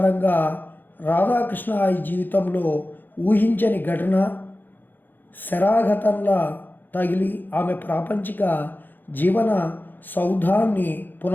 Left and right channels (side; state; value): right; late; 0.089 ms